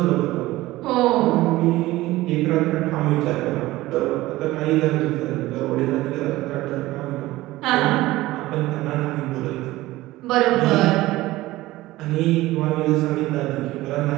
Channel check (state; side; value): quieter; left; 17.7 dB